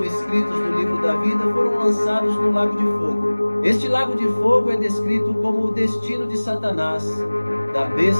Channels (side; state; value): both; inverted; correlation -1.00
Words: escritos no livro da vida foram lançados no lago de fogo. Este lago de fogo é descrito como o destino de Satanás, da